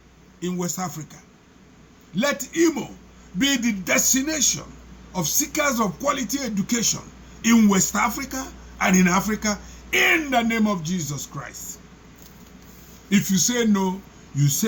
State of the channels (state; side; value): identical; both; correlation 1.00